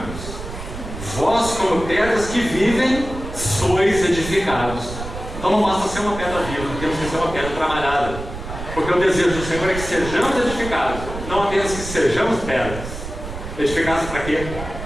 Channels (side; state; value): right; noise; rumble, 9 dB below the sound